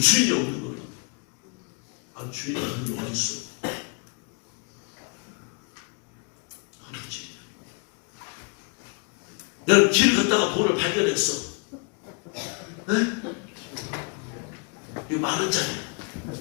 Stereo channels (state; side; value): quieter; right; 35.6 dB